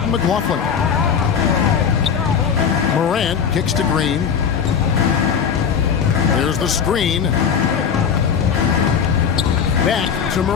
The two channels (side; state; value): right; quieter; 7.2 dB